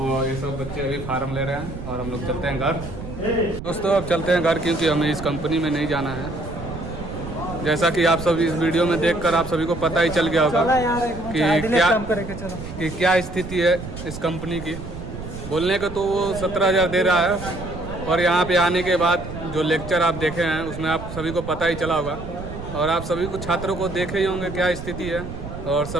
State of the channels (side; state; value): right; noise; rumble, 10 dB below the sound